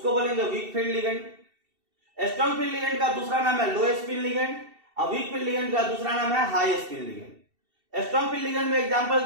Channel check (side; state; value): left; late; 2.7 ms